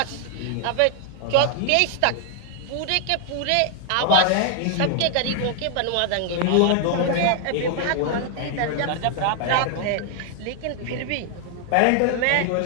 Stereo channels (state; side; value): different; both; correlation 0.00